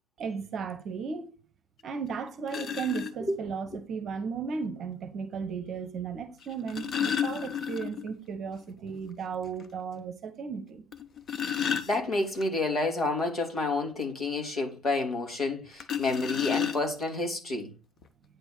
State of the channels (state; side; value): normal; both; correlation 0.63